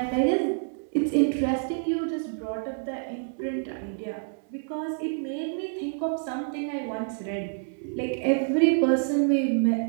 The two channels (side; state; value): left; silent; digital silence